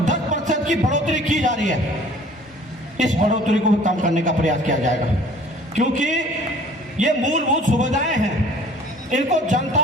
10% की बढ़ोतरी की जा रही है। इस बढ़ोतरी को भी कम करने का प्रयास किया जाएगा, क्योंकि ये मूलभूत सुविधाएं हैं, इनको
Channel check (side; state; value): both; normal; correlation 0.51